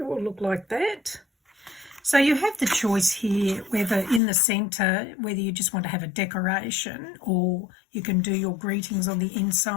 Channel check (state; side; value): drops out; right; at 4.2 s